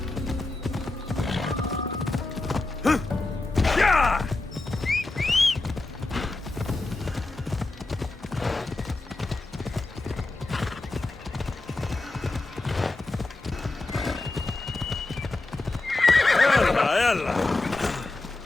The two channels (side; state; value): right; quieter; 3.1 dB